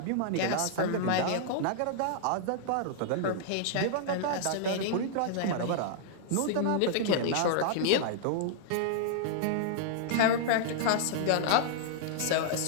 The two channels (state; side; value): different; both; correlation -0.01